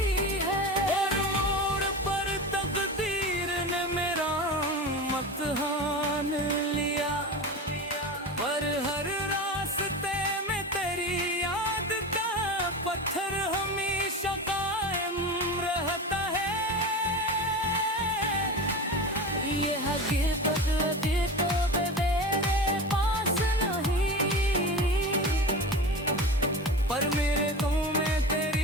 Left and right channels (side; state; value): both; normal; correlation 0.28